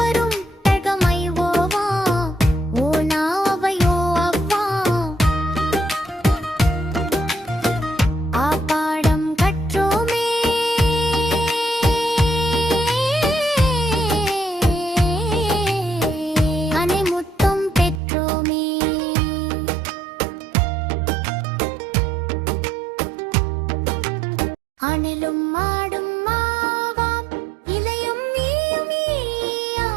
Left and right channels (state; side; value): drops out; left; at 18.0 s